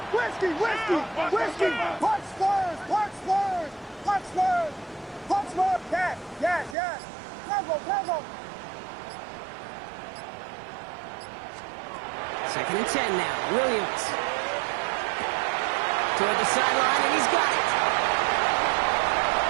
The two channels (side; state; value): left; drops out; at 6.8 s